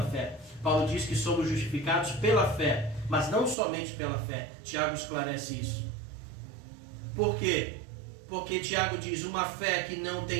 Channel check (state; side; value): drops out; left; at 3.6 s